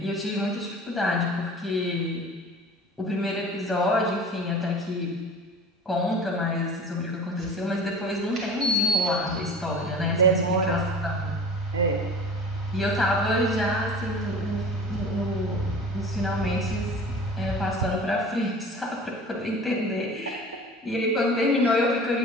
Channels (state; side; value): normal; both; correlation 0.40